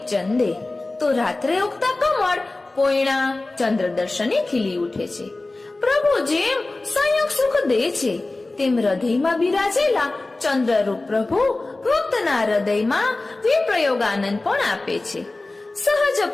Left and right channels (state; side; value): quieter; right; 3.1 dB